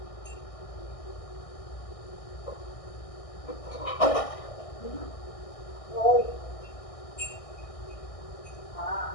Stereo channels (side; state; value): right; late; 1.6 ms